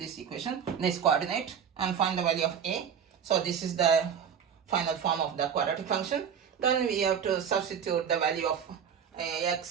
equation, this coordinate, and find the value of a. So this is the final form of the quadratic function. Then we have to substitute the value of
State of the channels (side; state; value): left; quieter; 7.8 dB